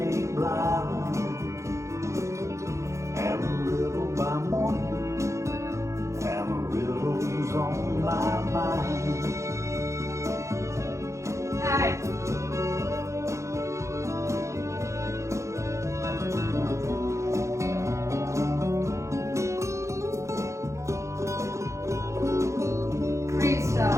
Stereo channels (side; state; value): left; late; 0.14 ms